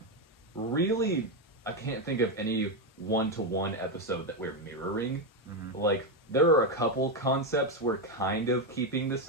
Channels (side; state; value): both; normal; correlation 0.07